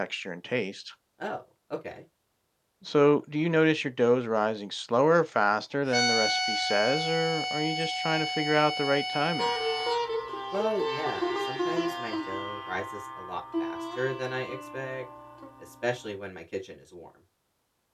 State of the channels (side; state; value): both; identical; correlation 1.00